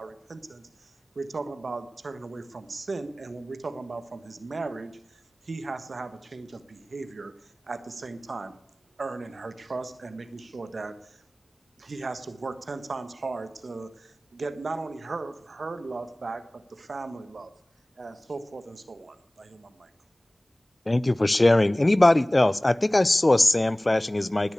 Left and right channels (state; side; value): normal; both; correlation 0.98